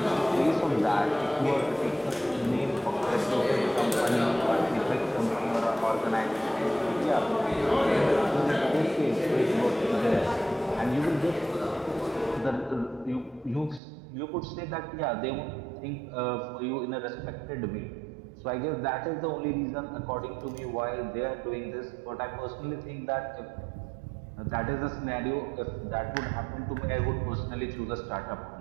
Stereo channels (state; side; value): drops out; left; at 13.8 s